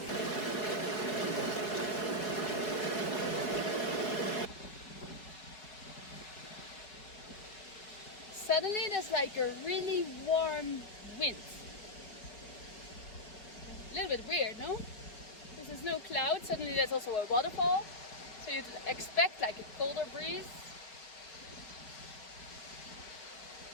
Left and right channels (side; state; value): right; late; 4.7 ms